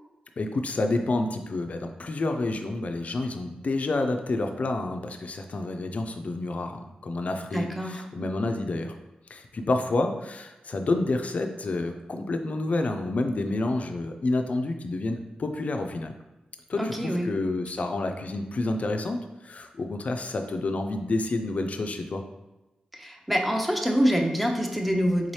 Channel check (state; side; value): normal; both; correlation 0.91